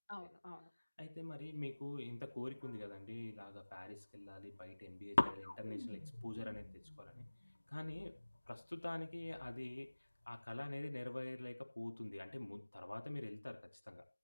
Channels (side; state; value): both; inverted; correlation -1.00